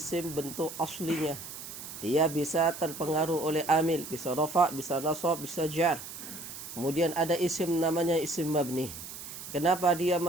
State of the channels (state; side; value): noise; right; hiss, 11 dB below the sound